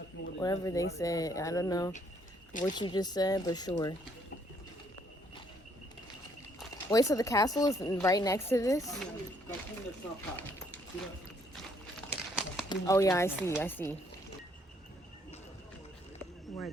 what Whatever they said. I don't know what you just said, but sure. Wait, so the castle is right next to this? Oh, yeah, I see. We're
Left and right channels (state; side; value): normal; both; correlation 0.67